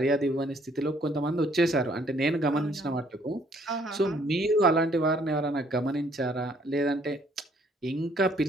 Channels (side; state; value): both; normal; correlation 0.64